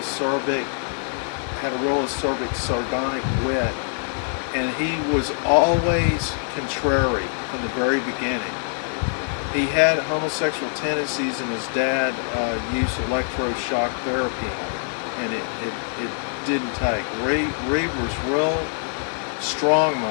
acerbic, sardonic wit, and he was always contrary from the very beginning. He had homosexual tendencies, and his dad used electroshock therapy on him, and it didn't take. Reed was real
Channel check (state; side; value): silent; right; 63 dB below the other